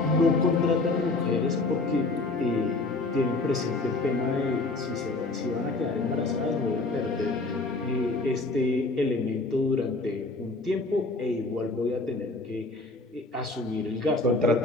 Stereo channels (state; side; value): quieter; right; 3.3 dB